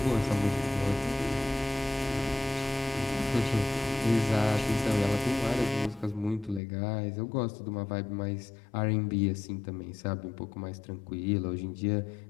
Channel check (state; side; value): drops out; right; at 6.6 s